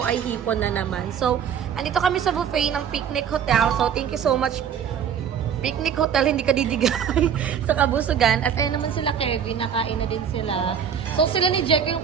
ay hipon na naman. So, andito kami sa buffet ng Picnic Hotel. So, thank you so much Picnic Hotel, hindi ka didigay sa Kabusugan. At ayun naman sila Kevin, nakain na din sila. So sila ni Jackie yung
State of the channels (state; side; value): quieter; left; 8.0 dB